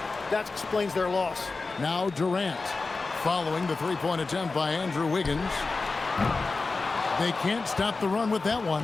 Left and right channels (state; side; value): quieter; right; 3.9 dB